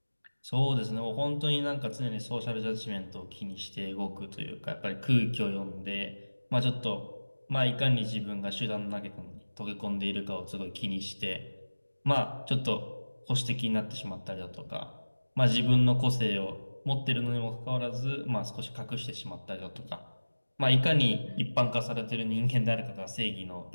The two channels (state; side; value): inverted; both; correlation -1.00